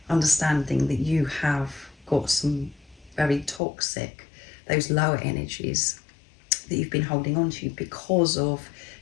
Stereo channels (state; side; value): drops out; right; at 3.6 s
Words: understanding that you have got some very toxic, those lower energies that you've been holding on to because of